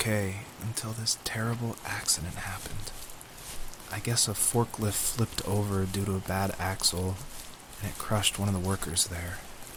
until this terrible accident happened. I guess a forklift flipped over due to a bad axle, and it crushed one of the workers there.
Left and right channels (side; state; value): both; identical; correlation 1.00